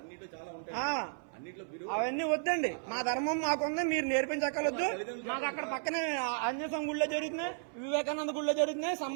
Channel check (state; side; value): silent; left; 55 dB below the other